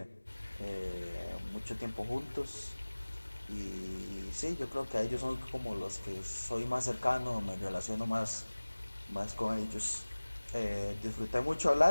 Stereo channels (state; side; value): inverted; both; correlation -1.00